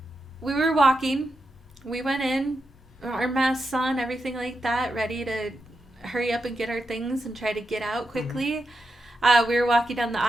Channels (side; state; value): both; normal; correlation 0.87